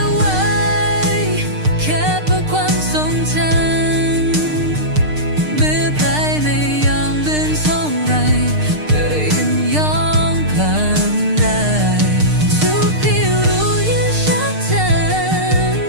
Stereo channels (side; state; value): left; late; 6.6 ms